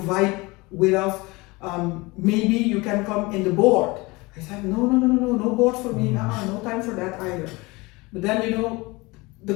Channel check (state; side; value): quieter; right; 23.9 dB